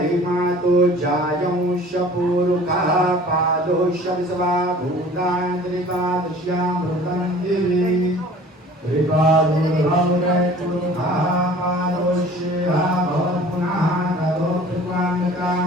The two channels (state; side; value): normal; both; correlation 0.47